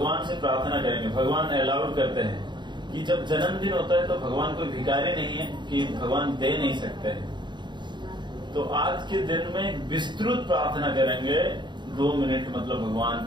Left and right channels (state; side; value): late; left; 0.22 ms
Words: से प्रार्थना करेंगे। भगवान अलाउड करते हैं कि जब जन्मदिन होता है तो भगवान कोई भिखारी नहीं है कि भगवान दे नहीं सकते हैं। तो आज के दिन में विस्तृत प्रार्थना करेंगे, 2 मिनट मतलब भगवान